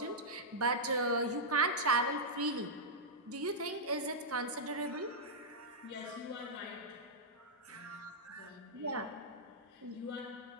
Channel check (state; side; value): normal; both; correlation -0.09